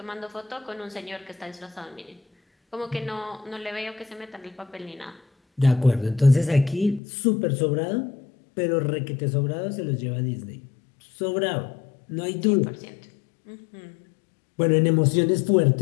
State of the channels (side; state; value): right; drops out; at 7.0 s